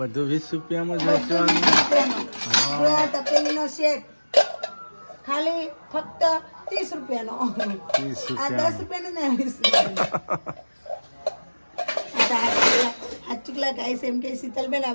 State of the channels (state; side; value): inverted; both; correlation -1.00